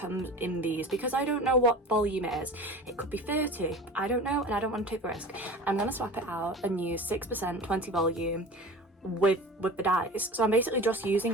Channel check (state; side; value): normal; both; correlation 0.37